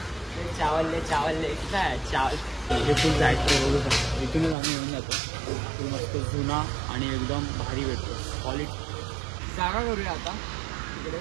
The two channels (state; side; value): drops out; left; at 4.5 s